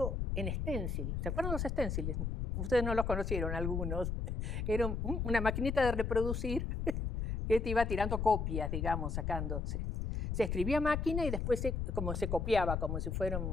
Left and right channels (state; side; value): noise; left; rumble, 1 dB below the sound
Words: en stencil. ¿Se acuerdan los stenciles? Ustedes no los conocieron, algunos. Era una maquinita de reproducir que te iba tirando copias, digamos, sacándose. Se escribía a máquina y después se copiaba, como si fuera